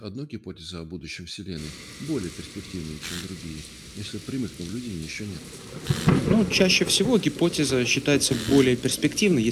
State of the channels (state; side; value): identical; both; correlation 1.00